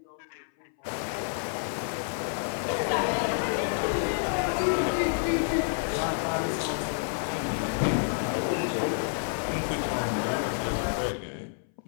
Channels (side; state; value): right; silent; 59 dB below the other